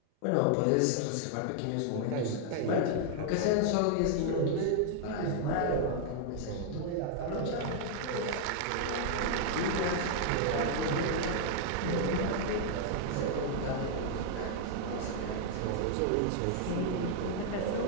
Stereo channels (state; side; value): different; both; correlation 0.00